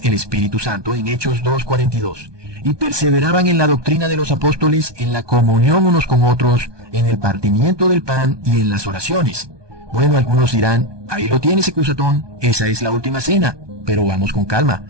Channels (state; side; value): late; left; 1.2 ms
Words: el Espíritu Santo en Hechos 2:42. Y perseveraban en la doctrina de los apóstoles, en la comunión unos con otros, en el partimiento del pan y en las oraciones. Bueno, algunos dirán, ahí lo tienes, Ecusatón, esa es la última cena. Pero vamos con calma,